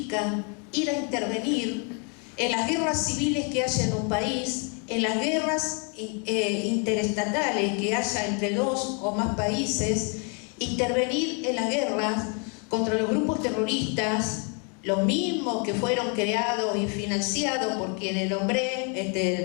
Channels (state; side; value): quieter; right; 37.4 dB